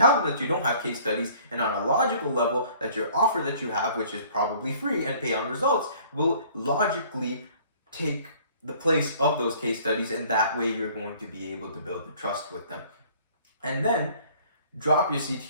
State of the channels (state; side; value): inverted; both; correlation -0.54